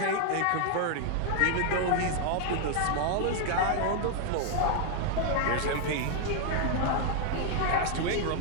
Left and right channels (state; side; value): different; both; correlation 0.00